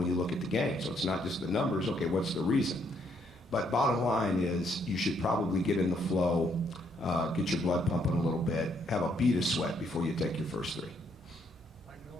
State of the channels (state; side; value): normal; both; correlation 0.71